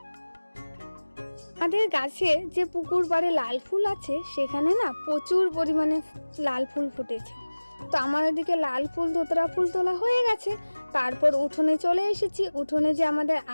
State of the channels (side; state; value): both; inverted; correlation -1.00